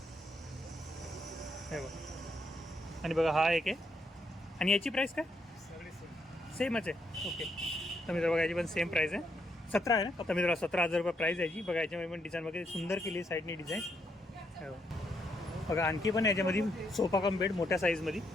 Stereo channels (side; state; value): both; normal; correlation 0.77